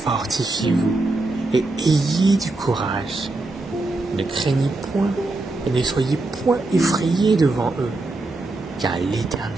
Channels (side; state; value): left; quieter; 3.0 dB